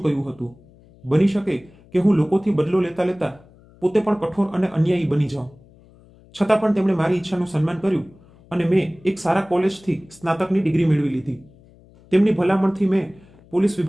કહ્યું હતું. બની શકે કે હું લોકોથી બદલો લેતા લેતા પોતે પણ કઠોર અને અન્યાયી બની જાઉં. છતાં પણ તેમણે મારી ઈચ્છાનું સન્માન કર્યું અને મેં એક સારા કોલેજથી સ્નાતકની ડિગ્રી મેળવી લીધી. તેમની ભલામણથી મેં પોલીસ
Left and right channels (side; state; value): left; noise; hum, 27 dB below the sound